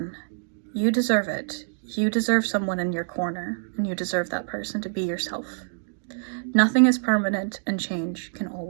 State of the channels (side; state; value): left; silent; digital silence